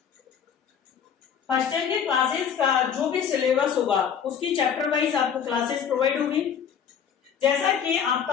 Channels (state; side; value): quieter; right; 7.7 dB